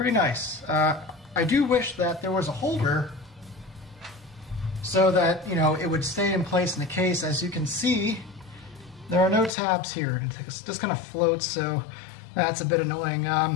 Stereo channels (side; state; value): right; drops out; at 9.5 s